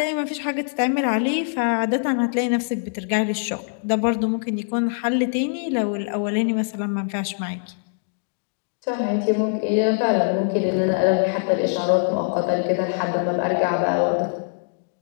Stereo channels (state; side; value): silent; right; digital silence